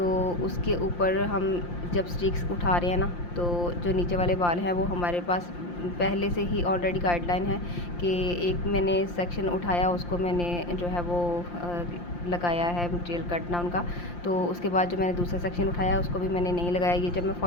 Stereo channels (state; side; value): late; right; 5.7 ms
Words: उसके ऊपर हम जब स्टिक्स उठा रहे हैं ना तो जो नीचे वाले बाल हैं वो हमारे पास पहले से ही ऑलरेडी गाइडलाइन है कि एक मैंने सेक्शन उठाया उसको मैंने जो है वो लगाया है मटेरियल कट डाउन का। तो उसके बाद जो मैंने दूसरा सेक्शन उठाया उसको भी मैंने नहीं लगाया। ये जब मैं